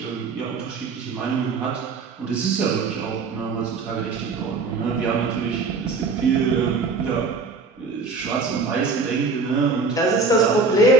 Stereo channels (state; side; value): quieter; left; 4.1 dB